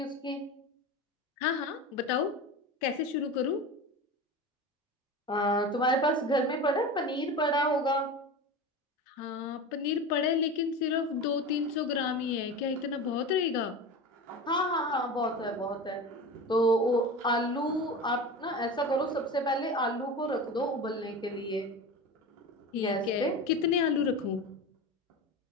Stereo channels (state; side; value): normal; both; correlation 0.28